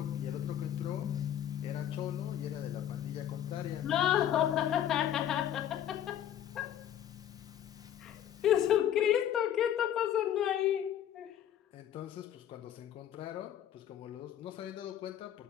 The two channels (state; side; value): quieter; right; 10.7 dB